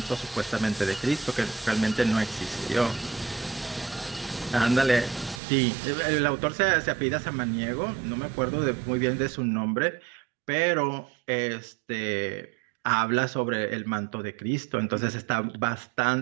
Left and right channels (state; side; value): drops out; left; at 5.4 s